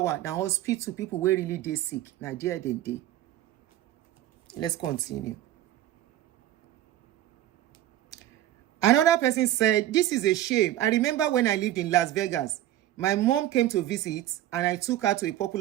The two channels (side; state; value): left; quieter; 13.4 dB